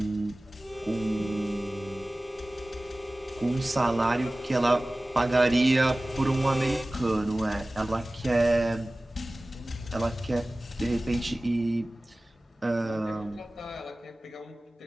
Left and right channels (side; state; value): both; normal; correlation 0.98